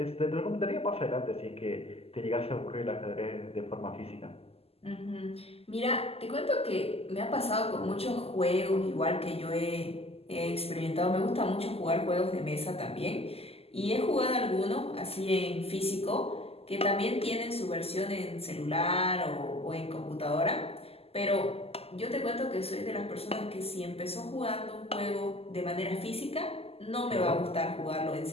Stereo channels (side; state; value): right; late; 0.29 ms